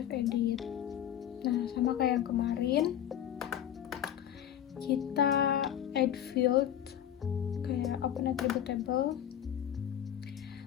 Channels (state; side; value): quieter; right; 10.5 dB